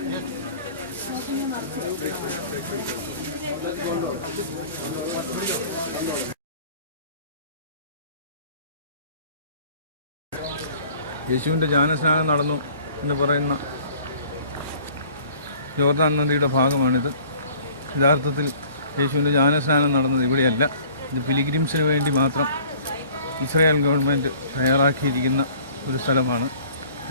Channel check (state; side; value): inverted; both; correlation -0.51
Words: യേശുവിൻ്റെ ജ്ഞാനസ്നാനം നടന്നു എന്ന് പറയുന്ന ജോർദാൻ നദിയുടെ ഭാഗമാണിത്. യഥാർത്ഥത്തിൽ യേശുവിൻ്റെ ജ്ഞാനസ്നാനം നടന്നത് ഇവിടെയല്ല. ഇത് പിലിഗ്രിംസിന് വേണ്ടി മാത്രം ഇസ്രായേൽ ഗവൺമെൻറ് തയ്യാറാക്കിയിരിക്കുന്ന ഒരു സ്ഥലമാണ്.